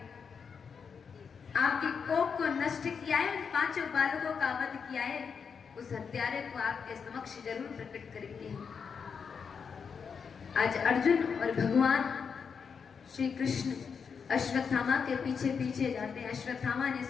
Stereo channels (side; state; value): right; quieter; 6.2 dB